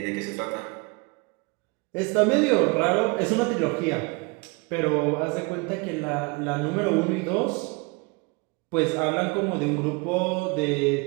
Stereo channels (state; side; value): quieter; left; 28.6 dB